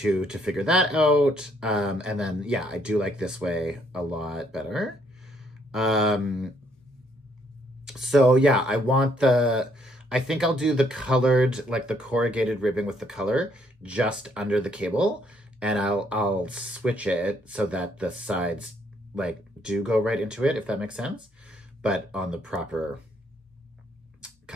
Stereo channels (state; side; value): normal; both; correlation 0.69